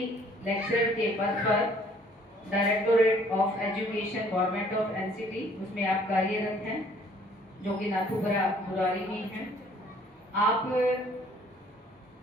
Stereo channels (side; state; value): both; normal; correlation 0.58